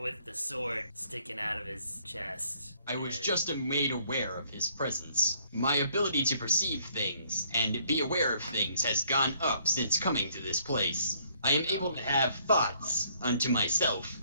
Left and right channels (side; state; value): both; inverted; correlation -0.65